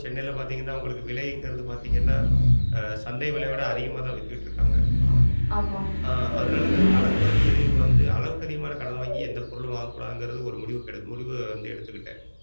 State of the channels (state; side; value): inverted; both; correlation -1.00